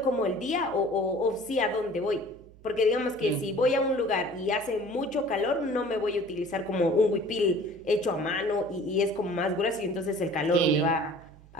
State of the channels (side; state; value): right; noise; hum, 24 dB below the sound